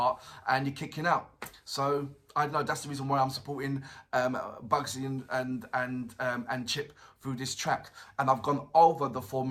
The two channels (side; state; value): both; identical; correlation 1.00